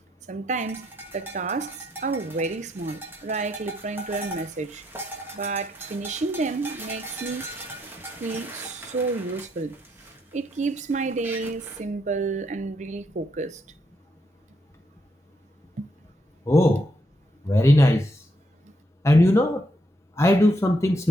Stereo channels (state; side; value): normal; both; correlation 0.76